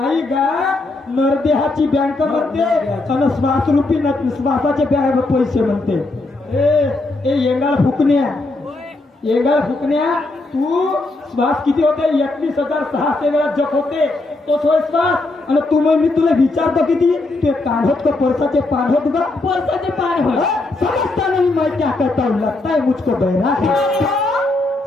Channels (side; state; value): right; quieter; 3.0 dB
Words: गा. नरदेहाची बँक म्हणते आणि श्वासरूपी श्वासाचे पैसे म्हणते. ए येंगाळ फुकण्या तू श्वास किती होते? 21,600 वेळा जप होते. तो विश्वास आणि तू मग मी तुला विचारतो किती ते काढत को परसाचे पान होत गा परसाचे पान हो समजता नहीं मैं क्या करता हूँ लगता है मुझको बहरा है